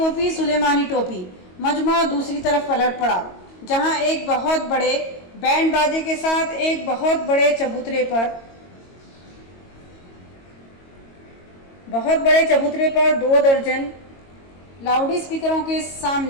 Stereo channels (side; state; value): right; late; 22 ms